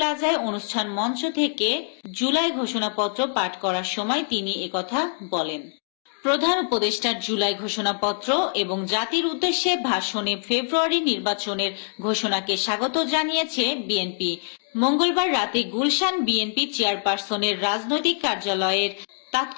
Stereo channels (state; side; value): silent; right; digital silence